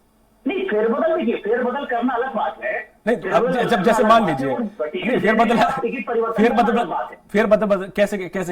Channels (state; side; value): identical; both; correlation 1.00